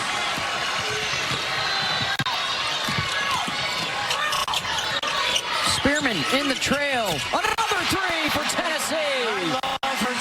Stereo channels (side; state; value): both; identical; correlation 1.00